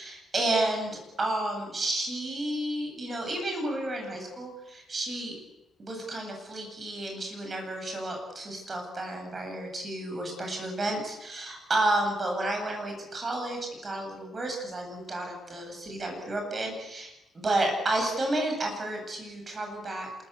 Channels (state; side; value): normal; both; correlation 0.82